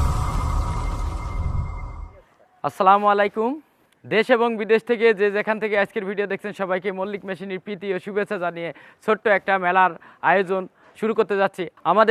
আসসালামু আলাইকুম। দেশ এবং বিদেশ থেকে যে যেখান থেকে আজকের ভিডিও দেখছেন সবাইকে মল্লিক মেশিনের প্রীতি ও শুভেচ্ছা জানিয়ে ছোট্ট একটা মেলার আয়োজন শুরু করতে যাচ্ছি।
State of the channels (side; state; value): both; identical; correlation 1.00